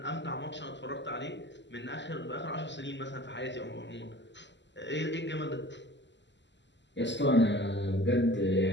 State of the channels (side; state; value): right; late; 0.52 ms